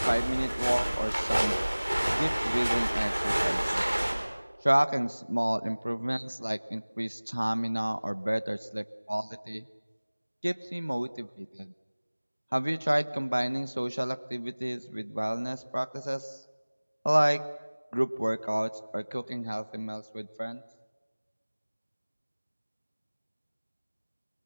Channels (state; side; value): inverted; both; correlation -1.00